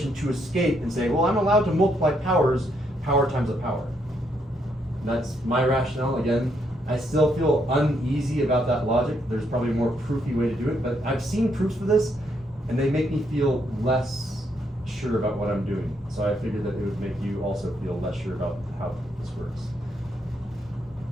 to escape and say, well, I'm allowed to multiply powers, power times a power. That's my rationale. Again, I still feel uneasy about that logic. There's probably a more proofy way to do it, but I've seen proofs for this, and they make me feel less sure about what I'm doing. So I figured that it would make you also feel less sure about how this works.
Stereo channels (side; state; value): both; normal; correlation 0.75